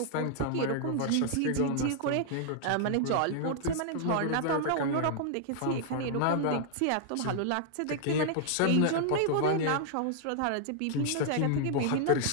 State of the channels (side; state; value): both; different; correlation -0.01